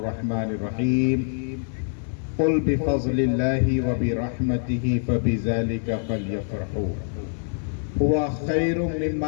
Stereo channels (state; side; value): silent; right; digital silence